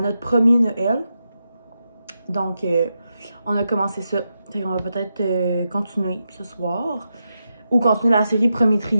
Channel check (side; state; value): both; inverted; correlation -0.87